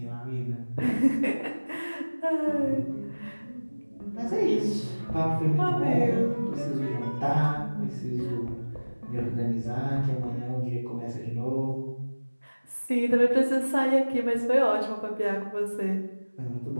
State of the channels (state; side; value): inverted; both; correlation -1.00